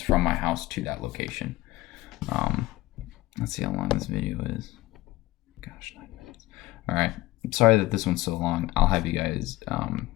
from my house to that location. Let's see how long this video is. Gosh, 9 minutes. All right, I'm sorry that this one's so long. I'll have you guys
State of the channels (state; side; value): quieter; right; 18.4 dB